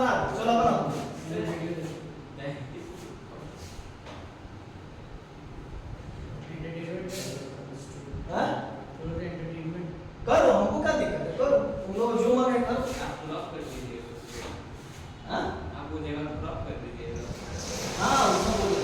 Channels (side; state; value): both; identical; correlation 1.00